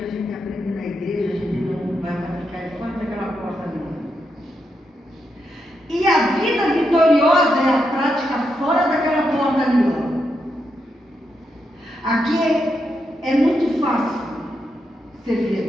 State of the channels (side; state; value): both; normal; correlation 0.83